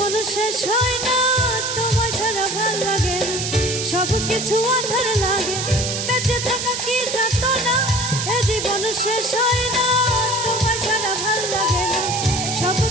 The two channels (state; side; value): noise; right; hiss, 3 dB below the sound